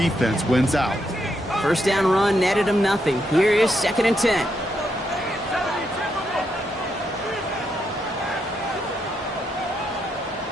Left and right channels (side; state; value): both; normal; correlation 0.80